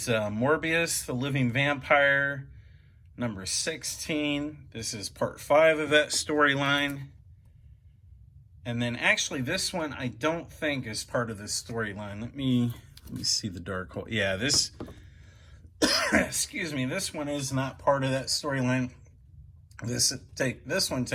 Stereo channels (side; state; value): both; identical; correlation 1.00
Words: Morbius, the Living Vampire, number 16. This is Part 5 of that storyline. And then actually this one I don't think is part of this storyline. Let me see the Darkhold. Yeah, this excuse me, this one is not part of that storyline. This one